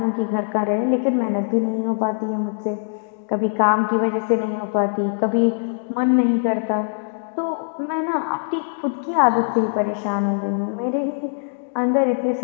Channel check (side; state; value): right; silent; digital silence